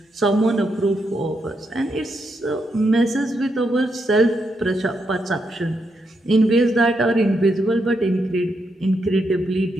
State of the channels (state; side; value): normal; both; correlation 0.81